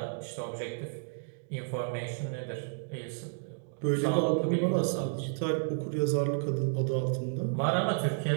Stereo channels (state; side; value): silent; left; digital silence